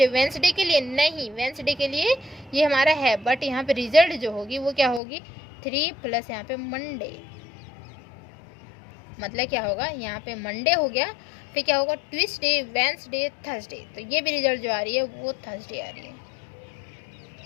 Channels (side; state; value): right; drops out; at 5.0 s